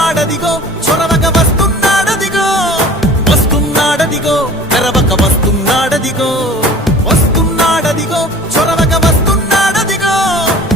చొరవక వస్తున్నాడదిగో, వస్తున్నాడదిగో తెరవక వస్తున్నాడదిగో, వస్తున్నాడదిగో చొరవక వస్తున్నాడదిగో,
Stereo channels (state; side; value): normal; both; correlation 0.44